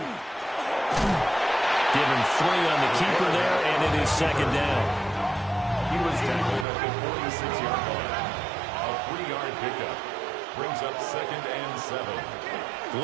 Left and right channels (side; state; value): left; drops out; at 6.7 s